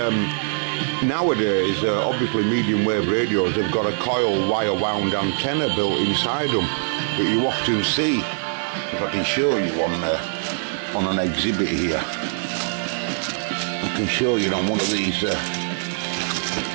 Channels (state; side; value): silent; left; digital silence